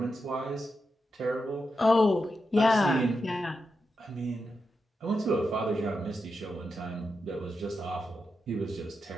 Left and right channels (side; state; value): both; normal; correlation 0.87